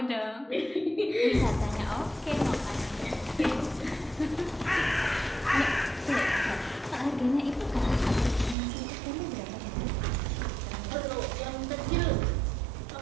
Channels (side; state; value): left; drops out; at 8.6 s